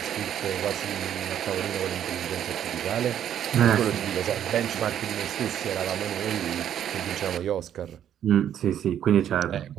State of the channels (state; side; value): quieter; left; 10.0 dB